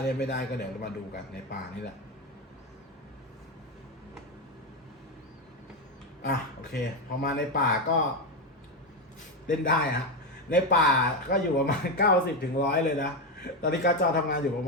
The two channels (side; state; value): both; normal; correlation 0.11